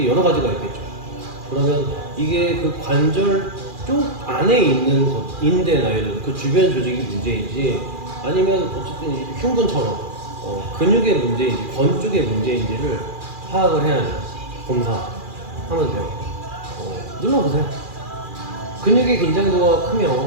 여러 가지가 있겠죠. 그러면 이게 그 관절 쪽 안에 있는 것, 인대나 이런 그 주변 조직이 문제인지 아니면 어쨌든 이 흉근처럼 근육의 문제인지 건 쪽의 문제인지를 파악을 해야죠. 검사하면 돼요. 눌러보세요. 근육의 긴장도가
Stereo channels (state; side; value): late; left; 2.4 ms